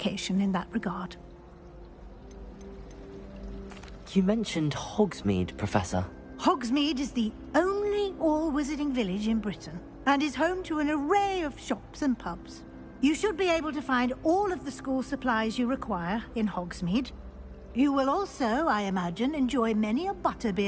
in that regard. You mentioned Hogsmeade, Professor. Hogsmeade is the only all-wizarding village in Britain, and is home to an array of shops and pubs. You should be able to find all of the school supplies you require in Hogsmeade. You will also, I imagine, enjoy many a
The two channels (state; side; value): identical; both; correlation 1.00